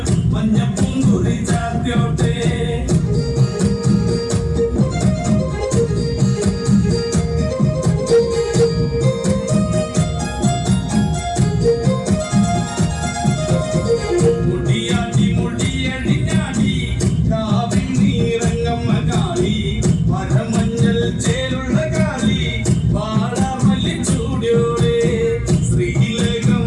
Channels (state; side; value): identical; both; correlation 1.00